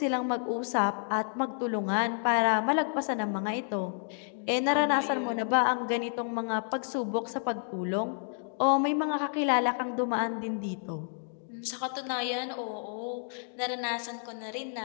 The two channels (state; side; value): silent; right; digital silence